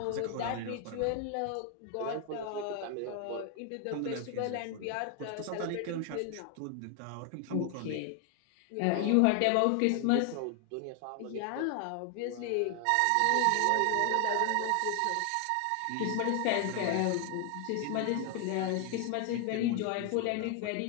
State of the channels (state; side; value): different; both; correlation 0.00